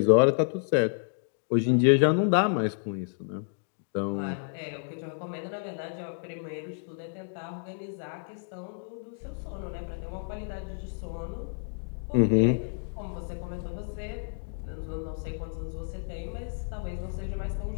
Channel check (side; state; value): right; silent; digital silence